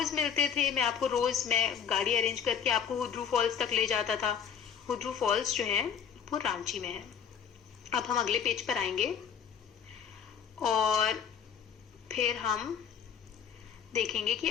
मिलते थे, मैं गाड़ी अरेंज करके आपको हुड्रू फॉल्स तक ले जाता था। हुड्रू फॉल्स जो है वो रांची में है। अब हम अगले पेज पर आएंगे और फिर हम देखेंगे कि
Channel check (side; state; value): right; quieter; 7.7 dB